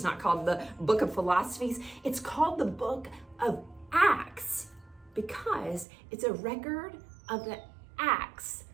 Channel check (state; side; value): drops out; left; at 5.9 s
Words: not called the Book of Philosophies. It's called the Book of Acts because it's a record of the acts